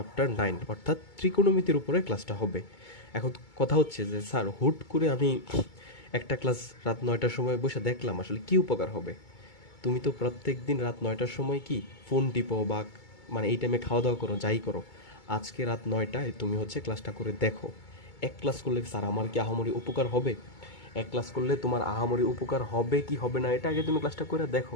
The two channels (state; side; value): late; right; 2.2 ms